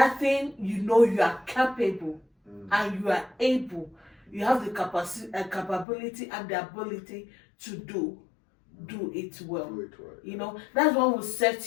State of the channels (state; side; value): drops out; right; at 5.9 s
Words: thing, you know you are capable and you are able. You have the capability and the ability to do it well. You know, that's what will